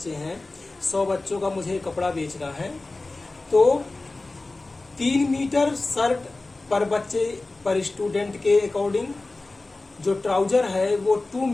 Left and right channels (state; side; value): quieter; right; 3.2 dB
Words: हैं, 100 बच्चों का मुझे कपड़ा बेचना है, तो 3 मीटर शर्ट पर बच्चे पर स्टूडेंट के अकॉर्डिंग, जो ट्राउजर है वो 2